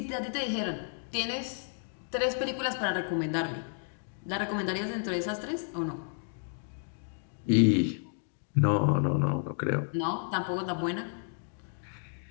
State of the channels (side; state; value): right; silent; 57 dB below the other